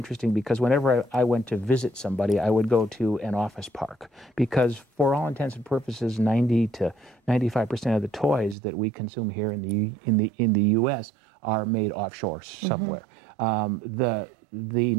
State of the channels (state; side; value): drops out; left; at 8.6 s